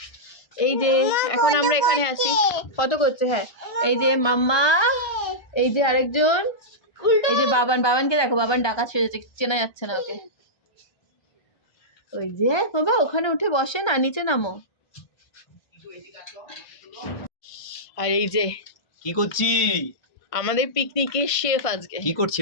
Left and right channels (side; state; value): right; late; 1.2 ms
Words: এই যে এখন আমরা এখানে আছি, কত করছে। হ্যাঁ, এই যে মাম্মা, এই যে আরেকজন, এই যে বাবানকে দেখো, বাবান ডাকাত সেজেছে, চেনা যাচ্ছে না ওকে। ওই যে বাবা ওখানে উঠে বসে না, নিচে নামো। আর এই যে কি করছি? আমাদের পিকনিকের শেফ আজকে কি করছি